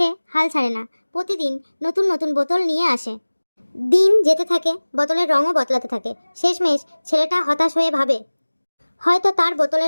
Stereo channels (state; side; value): inverted; both; correlation -1.00